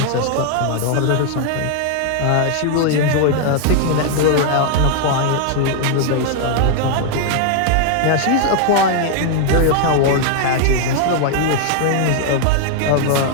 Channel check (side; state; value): both; different; correlation 0.00